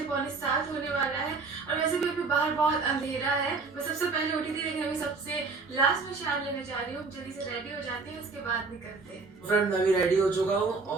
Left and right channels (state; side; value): quieter; left; 4.2 dB